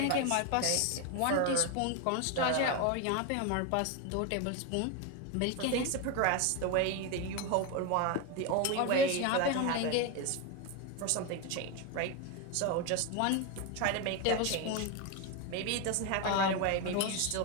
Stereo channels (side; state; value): both; different; correlation 0.02